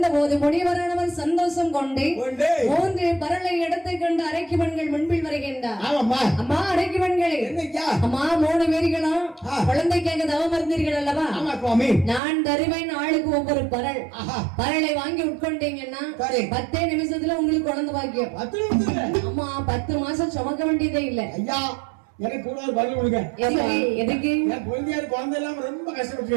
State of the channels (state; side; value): drops out; left; at 12.2 s